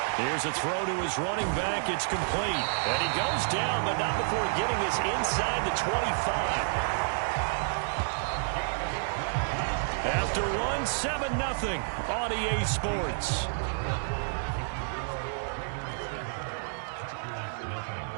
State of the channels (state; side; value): silent; left; digital silence